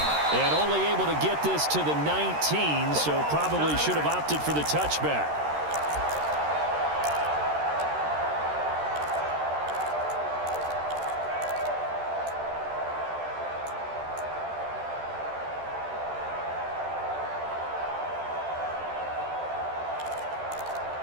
And only able to get this to the 19, so probably should have opted for the touchback.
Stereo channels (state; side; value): late; left; 13 ms